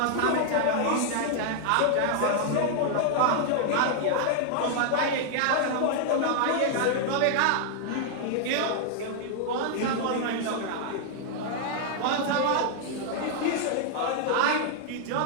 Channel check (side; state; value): both; different; correlation -0.01